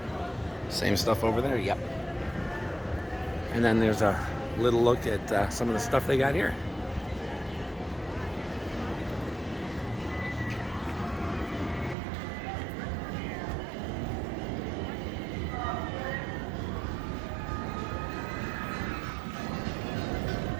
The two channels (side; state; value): left; drops out; at 12.0 s